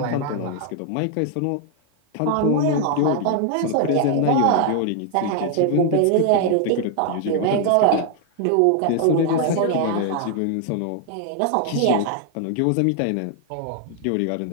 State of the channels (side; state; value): both; different; correlation 0.00